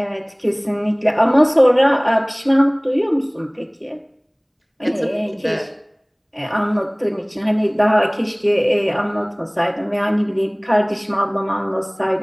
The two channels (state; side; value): identical; both; correlation 1.00